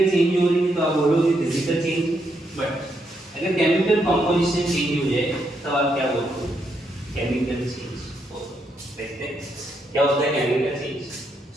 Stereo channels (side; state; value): both; normal; correlation 0.78